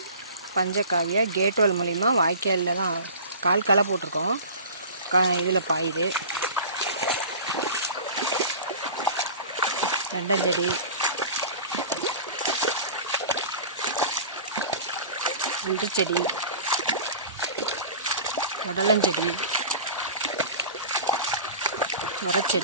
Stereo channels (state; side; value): inverted; both; correlation -0.37